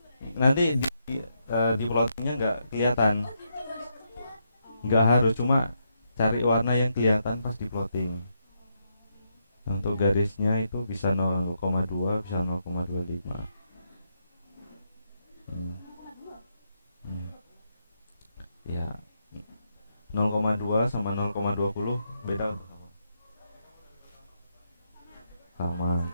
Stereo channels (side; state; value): both; inverted; correlation -0.80